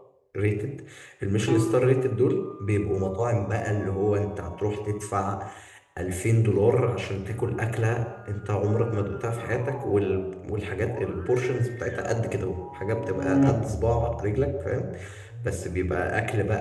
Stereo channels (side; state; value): both; identical; correlation 1.00